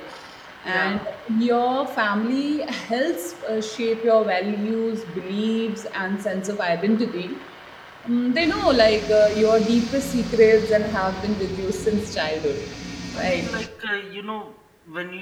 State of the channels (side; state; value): both; identical; correlation 1.00